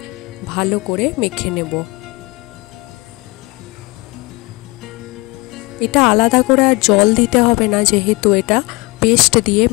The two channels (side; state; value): right; quieter; 25.2 dB